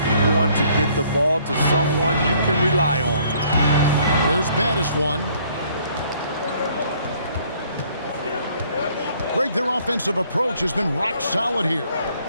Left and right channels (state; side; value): inverted; both; correlation -0.62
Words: want to get the ball to someone you can rely on. Here's baddest one. Greg, their offensive approach has been rock solid here.